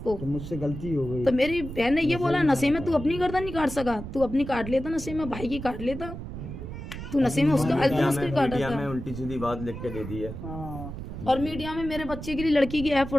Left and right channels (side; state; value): right; noise; rumble, 9 dB below the sound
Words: तो मुझसे गलती हो गई। तो मेरी बहन ने ये बोला नशे में तू अपनी गर्दन नहीं काट सका, तू अपनी काट लेता, नशे में भाई की काट लेता, तू नशे में उसका अल्तमश को काटा था। उल्टी सीधी बात लिख के दे दी है। और मीडिया में मेरे बच्चे के लिए लड़की की ऐप